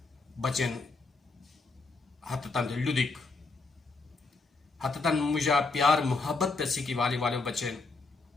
بچن حتتان لدک حتتان مجھا پیار محبت پیسی کی والی والے بچن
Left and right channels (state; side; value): quieter; right; 3.8 dB